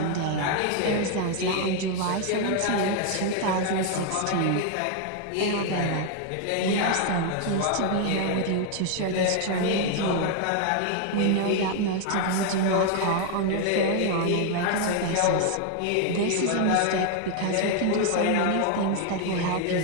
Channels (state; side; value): different; both; correlation 0.00